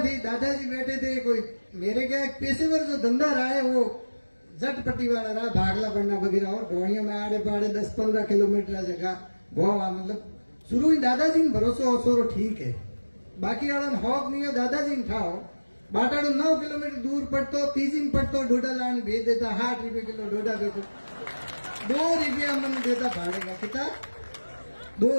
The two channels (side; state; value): both; inverted; correlation -1.00